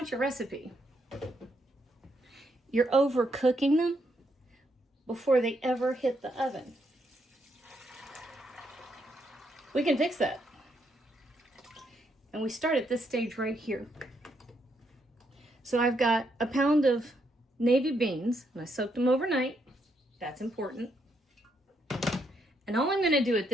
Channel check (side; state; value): both; normal; correlation 0.77